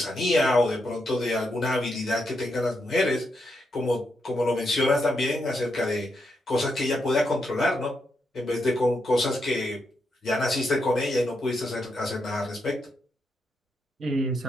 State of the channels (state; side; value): normal; both; correlation 0.82